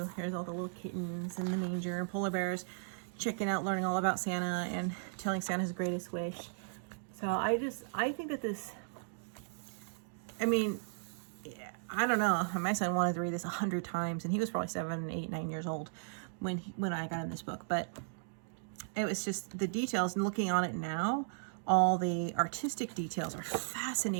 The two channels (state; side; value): silent; left; digital silence